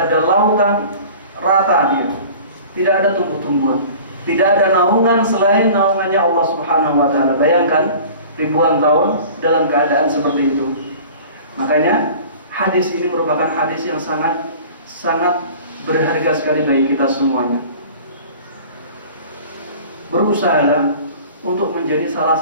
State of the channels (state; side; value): inverted; both; correlation -0.43